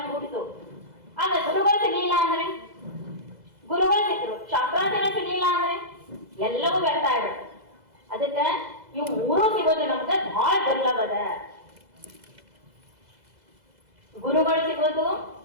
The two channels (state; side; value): late; left; 2.0 ms